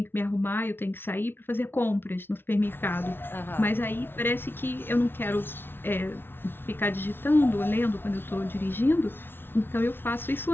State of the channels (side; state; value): right; late; 0.11 ms